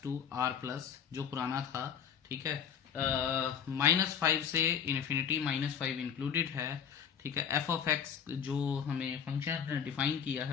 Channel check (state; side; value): quieter; right; 7.9 dB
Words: to r plus, जो पुराना था, ठीक है, -5 से इन्फिनिटी, -5 इंक्लूडेड है, ठीक है। f ऑफ x जो हमें फंक्शन डिफाइन किया